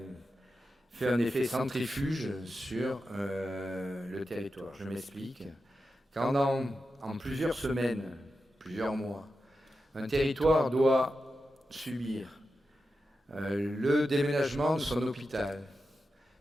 un effet centrifuge sur le territoire. Je m'explique. Quand en plusieurs semaines, plusieurs mois, un territoire doit subir le déménagement de son hôpital,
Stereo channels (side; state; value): both; normal; correlation 0.90